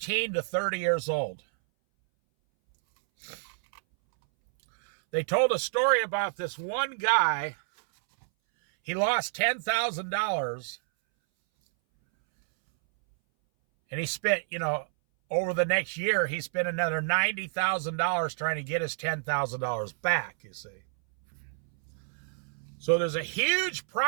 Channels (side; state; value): left; silent; 59 dB below the other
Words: to 30 years old. They told a story about this one guy. He lost $10,000, and he spent, over the next year, he spent another $90,000 trying to get his $10,000 back, you see. So there's a huge